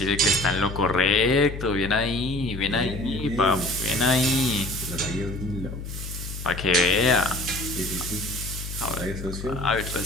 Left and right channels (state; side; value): noise; left; hum, 8 dB below the sound